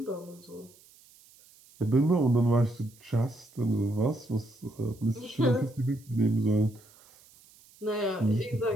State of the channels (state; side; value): noise; right; hiss, 27 dB below the sound